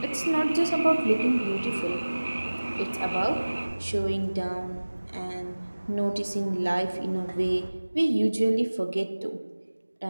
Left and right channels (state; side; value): inverted; both; correlation -1.00